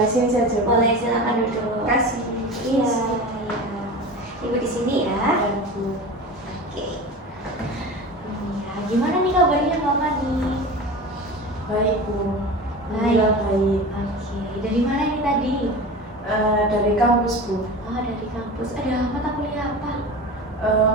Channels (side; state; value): both; normal; correlation 0.32